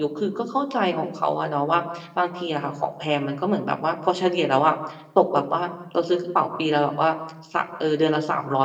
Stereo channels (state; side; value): identical; both; correlation 1.00